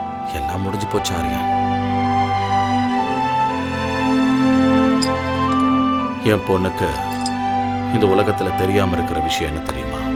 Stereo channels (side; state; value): both; identical; correlation 1.00